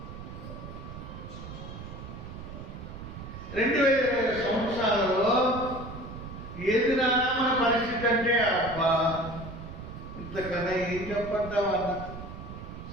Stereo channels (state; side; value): noise; right; rumble, 11 dB below the sound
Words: 2020 సంవత్సరాలలో ఏది నానా మన పరిస్థితి అంటే అబ్బా ఇంతకన్నా ఏం చెప్పంటామన్న